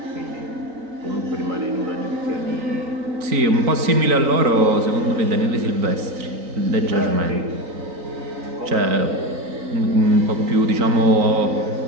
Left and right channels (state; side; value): late; left; 3.9 ms